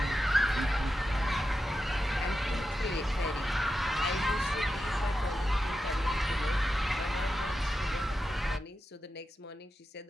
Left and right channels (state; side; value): normal; both; correlation 0.90